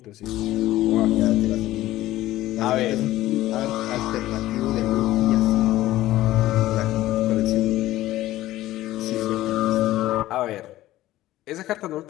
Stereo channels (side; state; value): right; quieter; 15.5 dB